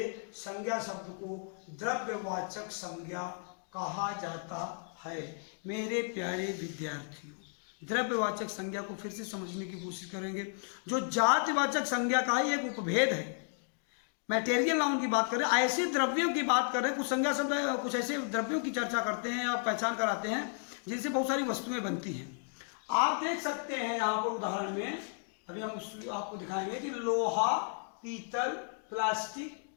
संज्ञा शब्द को द्रव्यवाचक संज्ञा कहा जाता है। मेरे प्यारे विद्यार्थियों, द्रव्यवाचक संज्ञा को फिर से समझने की कोशिश करेंगे। जो जातिवाचक संज्ञा का ही एक उपभेद है, मैटेरियल नाउन की बात करें, ऐसे द्रव्यों की बात करें, कुछ संज्ञा शब्द कुछ ऐसे द्रव्यों की चर्चा करते हैं या पहचान कराते हैं जिनसे बहुत सारी वस्तुएं बनती हैं। आप देख सकते हैं यहाँ पर उदाहरण में, अभी हम आपको दिखाएंगे कि लोहा, पीतल, प्लास्टिक,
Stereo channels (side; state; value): right; silent; 55 dB below the other